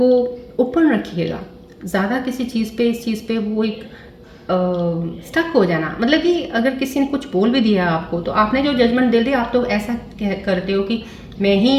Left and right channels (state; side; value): identical; both; correlation 1.00